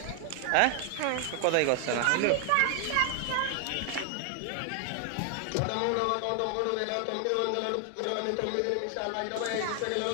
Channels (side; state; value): both; different; correlation 0.00